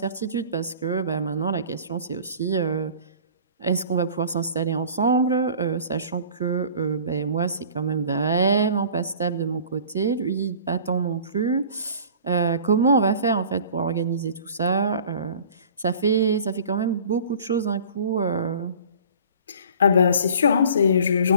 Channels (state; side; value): inverted; both; correlation -0.46